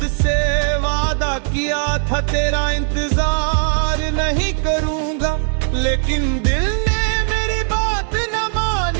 से वादा किया था तेरा इंतजार नहीं करूंगा, लेकिन दिल ने मेरी बात न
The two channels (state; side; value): silent; left; 57 dB below the other